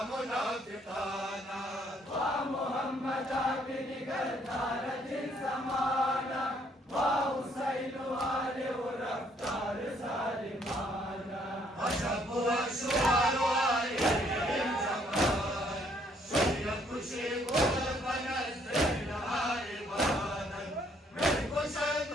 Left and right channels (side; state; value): both; normal; correlation 0.67